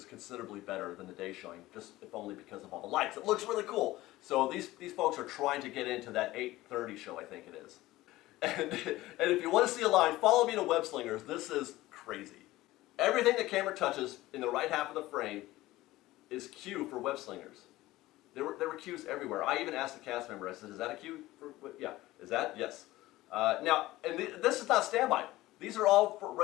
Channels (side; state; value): right; quieter; 17.4 dB